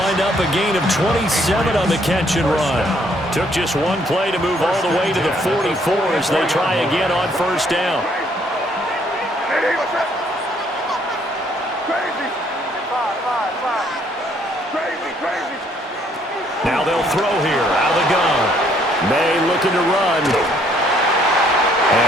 wind up a gain of 27 on the catch and run. Took just one play to move all the way to the 44 as they try again on first down. Now they'll throw here out of the gun. May looking to run.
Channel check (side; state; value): both; normal; correlation 0.66